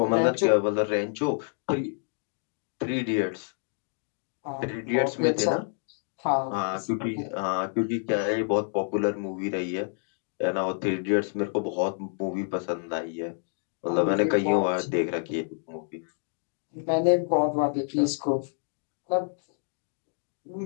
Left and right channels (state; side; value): silent; right; 59 dB below the other